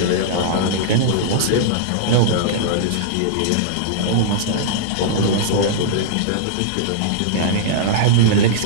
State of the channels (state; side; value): different; both; correlation -0.02